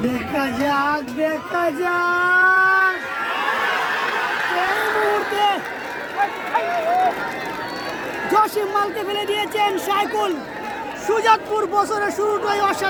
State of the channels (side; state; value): both; identical; correlation 1.00